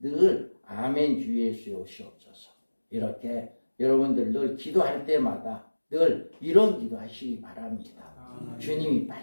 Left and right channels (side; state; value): both; inverted; correlation -1.00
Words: 아멘 주 예수의 오시옵소서. 이렇게 여러분들 늘 기도할 때마다 늘 이런 기도하시기 바랍니다. 주님이